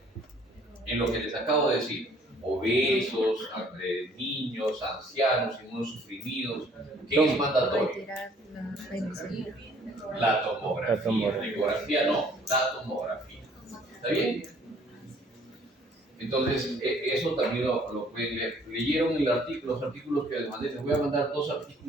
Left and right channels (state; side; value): normal; both; correlation 0.59